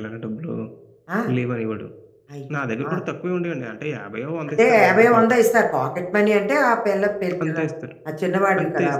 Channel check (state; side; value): identical; both; correlation 1.00